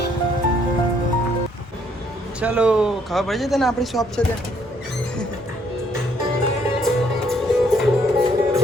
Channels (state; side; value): normal; both; correlation 0.67